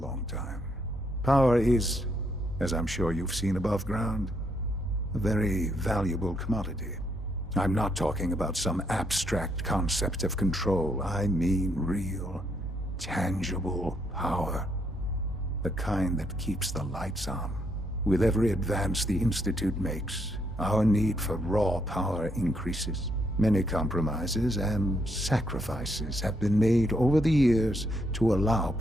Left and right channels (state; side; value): normal; both; correlation 0.74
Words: time. Power is, as I'm sure you've seen above ground, a very valuable commodity. I'm not talking about some abstract concept of control. I mean real, tangible power. The kind that keeps the lights on. With every advance the Institute makes, our need for raw power increases. Many compromises and sacrifices have been made over the years to allow